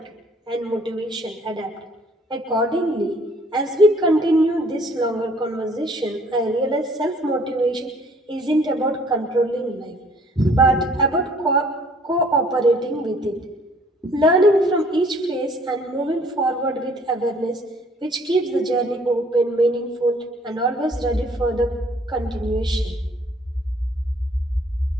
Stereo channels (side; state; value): both; normal; correlation 0.58